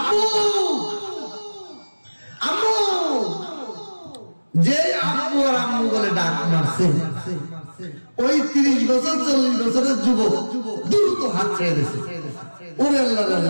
আম্মু, যে আম্মু আর আম্মু বলে ডাক মারছে, ওই 30 বছর 40 বছরের যুবক দ্রুত হাত ছেড়ে দিয়েছে। ওরে আল্লাহ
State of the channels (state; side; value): inverted; both; correlation -1.00